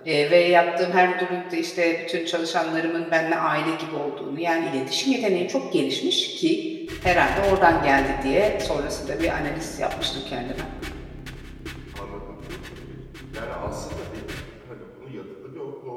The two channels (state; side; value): identical; both; correlation 1.00